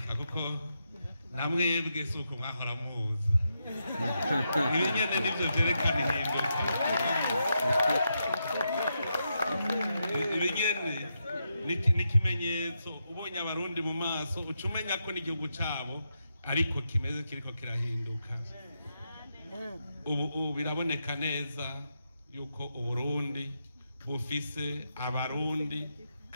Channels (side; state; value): both; inverted; correlation -0.84